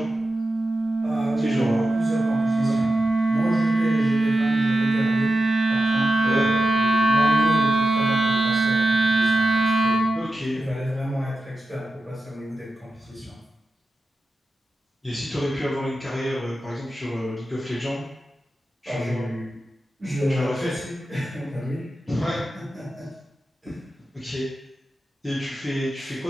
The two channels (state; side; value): normal; both; correlation 0.91